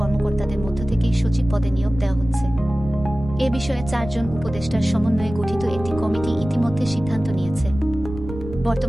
মধ্য থেকেই সচিব পদে নিয়োগ দেওয়া হচ্ছে। এ বিষয়ে 4 জন উপদেষ্টার সমন্বয়ে গঠিত একটি কমিটি ইতিমধ্যে সিদ্ধান্ত নিয়েছে।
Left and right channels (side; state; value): right; noise; rumble, 11 dB below the sound